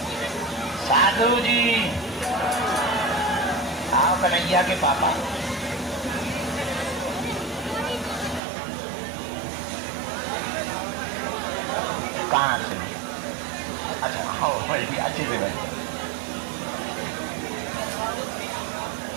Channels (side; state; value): left; drops out; at 8.4 s